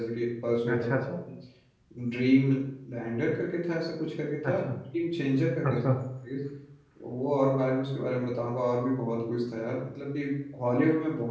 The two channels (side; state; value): both; identical; correlation 1.00